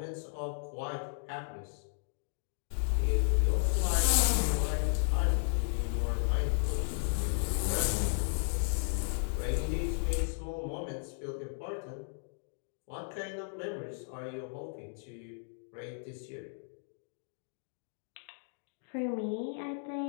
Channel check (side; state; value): right; silent; digital silence